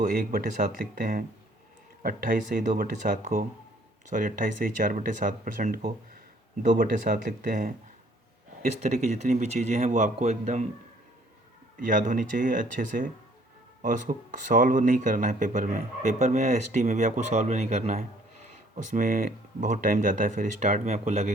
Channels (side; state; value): both; normal; correlation 0.60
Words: 1/7 लिखते हैं, 28/2/7 को 28/4/7% को 2/7 लिखते हैं। इस तरह की जितनी भी चीज़ें हैं वो आपको एकदम याद होनी चाहिए अच्छे से, और उसको सॉल्व नहीं करना है पेपर में या एसटी में भी आपको सॉल्व नहीं करना है, उसमें बहुत टाइम जाता है, फिर स्टार्ट में आपको